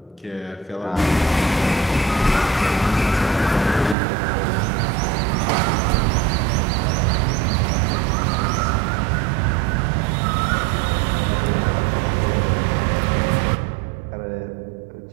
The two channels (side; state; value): left; drops out; at 4.0 s